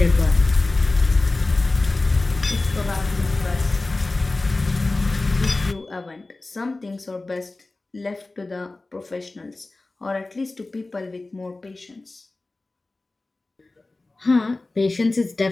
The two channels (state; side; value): quieter; right; 3.1 dB